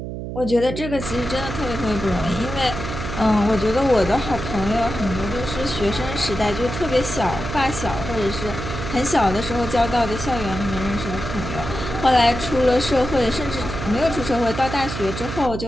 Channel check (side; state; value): right; noise; hum, 7 dB below the sound